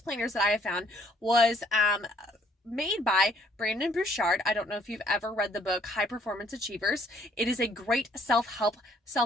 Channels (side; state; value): both; normal; correlation 0.63